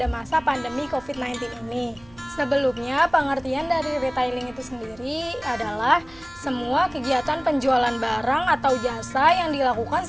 masa pandemi COVID-19 ini. Sebelumnya, pengertian dari retailing itu sendiri adalah semua kegiatan penjualan barang atau jasa yang dilakukan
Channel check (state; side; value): noise; right; hum, 26 dB below the sound